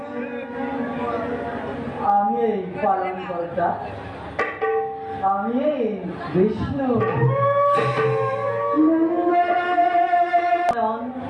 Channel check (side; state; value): both; identical; correlation 1.00